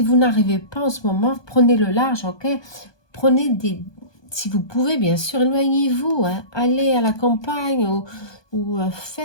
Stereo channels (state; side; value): late; right; 1.2 ms